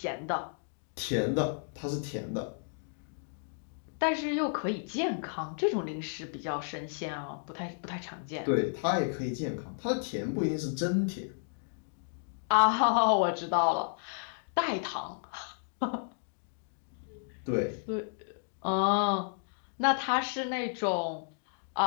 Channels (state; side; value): silent; right; digital silence